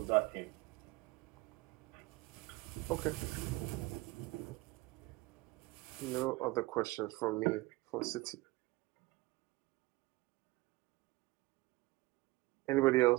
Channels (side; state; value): left; quieter; 21.2 dB